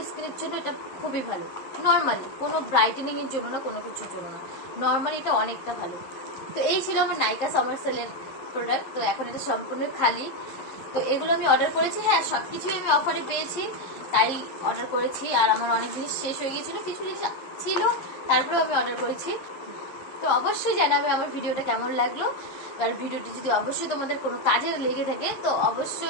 স্কিনের জন্য এটা খুবই ভালো। নর্মালি কোনো ব্রাইটেনিং এর জন্য না, কোনো কিছুর জন্য না, নর্মালি এটা অনেকটা ভালো। তো এই ছিল আমার নাইকা সামার সেলের প্রোডাক্ট। তো এখন এটা সম্পূর্ণ খালি। তো এগুলো আমি অর্ডার করেছি, হ্যাঁ সবকিছুই আমি অফারে পেয়েছি তাই অর্ডার করেছি। আর আমার অনেক জিনিস শেষ হয়ে গিয়েছিল, কিছু জিনিস ছিল তারপরেও আমি অর্ডার করেছি। তো অবশ্যই জানাবে আমার ভিডিওটা কেমন লাগলো। আর ভিডিওটি যদি অবশ্যই তোমাদের কোনো কাজে লেগে থাকে তো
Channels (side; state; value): right; late; 11 ms